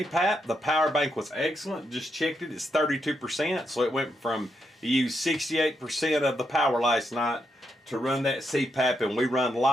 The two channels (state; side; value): normal; both; correlation 0.81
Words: The power bank was excellent. Just checked it. It's 32%, so it went from you used 68% of the power last night to run that CPAP, and we run